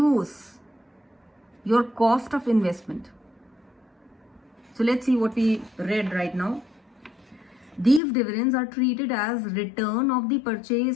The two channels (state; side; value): drops out; right; at 8.0 s